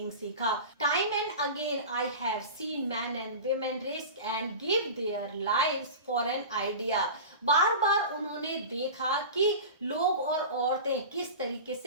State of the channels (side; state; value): both; inverted; correlation -0.31